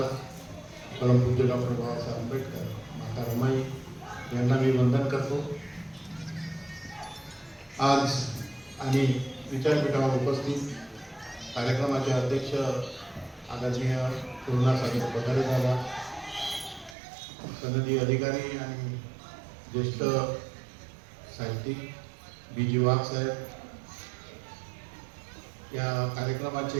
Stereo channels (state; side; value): drops out; left; at 16.9 s